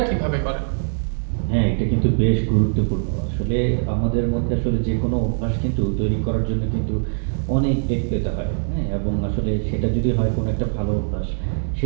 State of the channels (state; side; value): silent; left; digital silence